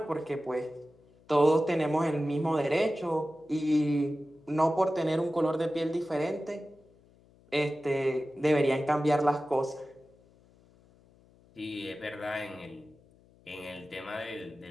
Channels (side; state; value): left; noise; hum, 29 dB below the sound